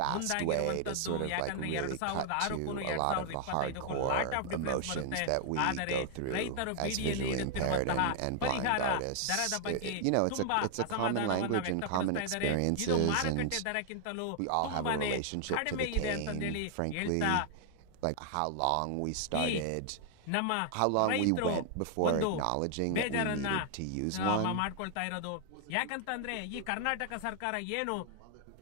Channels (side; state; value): both; different; correlation 0.00